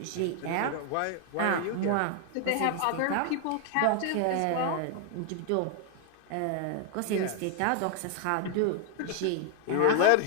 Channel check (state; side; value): different; both; correlation 0.00